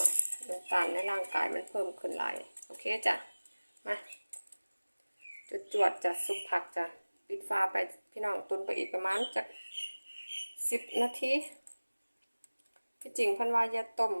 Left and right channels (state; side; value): inverted; both; correlation -1.00